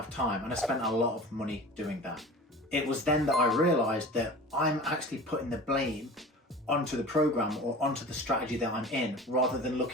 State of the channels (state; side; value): normal; both; correlation 0.37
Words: of time. And I spent a lot of money doing that. It was then that I realized that I'm actually putting the blame onto the program or onto the strategy that I'm in, rather than